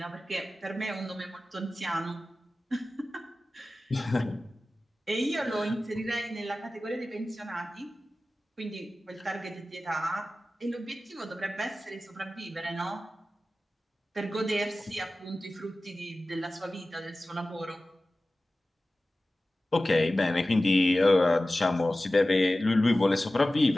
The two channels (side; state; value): both; normal; correlation 0.96